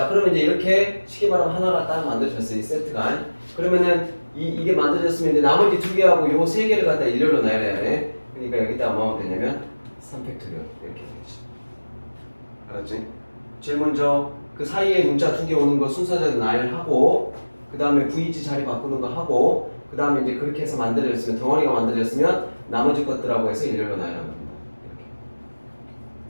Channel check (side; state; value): both; inverted; correlation -1.00